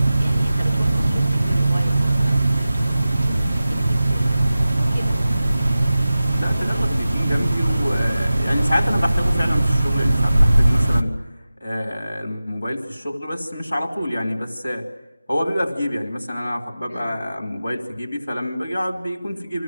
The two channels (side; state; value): both; inverted; correlation -0.95